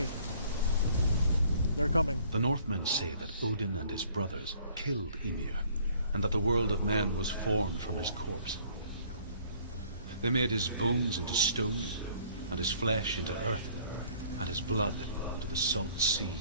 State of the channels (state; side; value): inverted; both; correlation -0.58